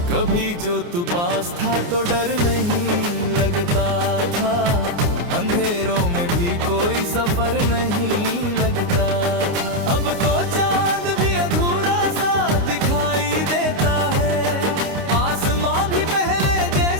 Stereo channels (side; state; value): left; late; 29 ms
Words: कभी जो तू पास था तो डर नहीं लगता था, अंधेरों में भी कोई सफर नहीं लगता था। अब तो चांद भी अधूरा सा दिखाई देता है, आसमां भी पहले